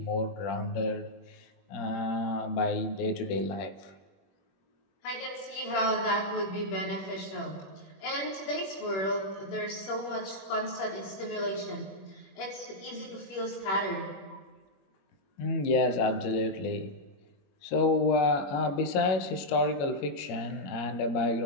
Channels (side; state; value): right; late; 21 ms